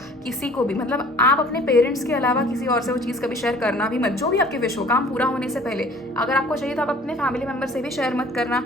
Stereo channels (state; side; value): normal; both; correlation 0.51